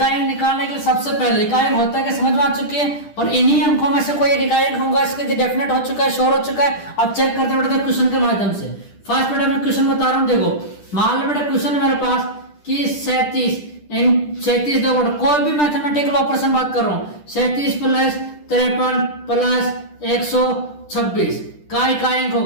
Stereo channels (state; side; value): late; right; 10 ms